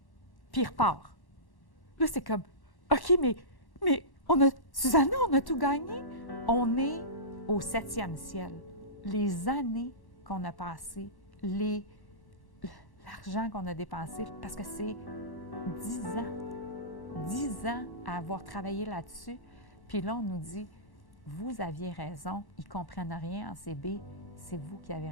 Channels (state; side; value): late; right; 1.1 ms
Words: » Puis il repart. Là, c'est comme « OK, mais Susanna, on a tout gagné. » On est au 7e ciel. Les années qu'on a passées, l'argent qu'on a dépensé, parce que c'est 10 ans à avoir travaillé là-dessus. Puis là, on nous dit « Vous aviez raison, ils ne comprennent rien en CB, c'est vous qui avez